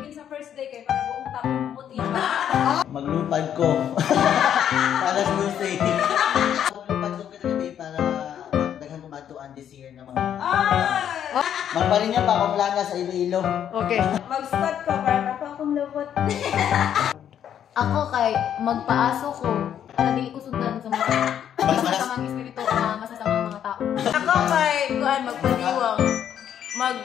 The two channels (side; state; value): right; quieter; 9.6 dB